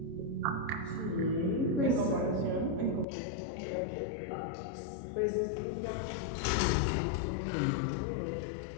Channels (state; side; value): drops out; right; at 3.1 s